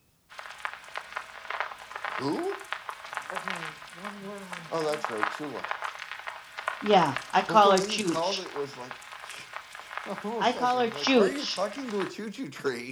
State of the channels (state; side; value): identical; both; correlation 1.00